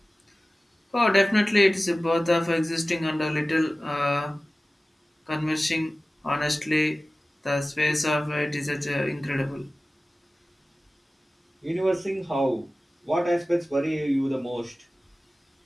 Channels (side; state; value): both; normal; correlation 0.96